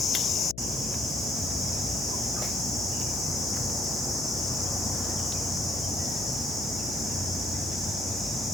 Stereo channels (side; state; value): left; noise; hum, 13 dB below the sound